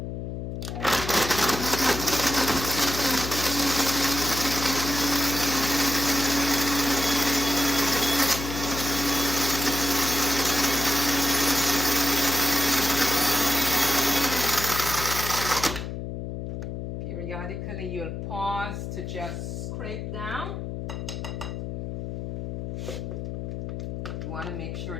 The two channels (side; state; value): left; noise; hum, 6 dB below the sound